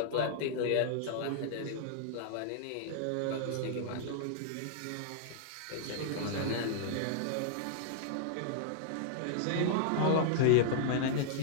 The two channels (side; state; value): both; different; correlation -0.01